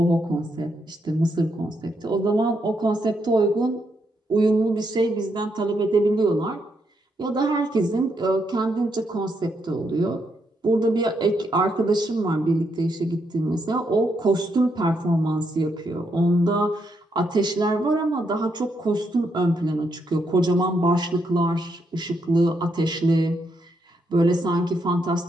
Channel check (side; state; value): both; normal; correlation 0.78